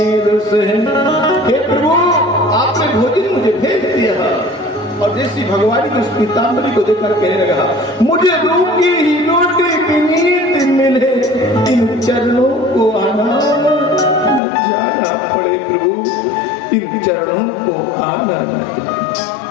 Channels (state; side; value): drops out; right; at 14.4 s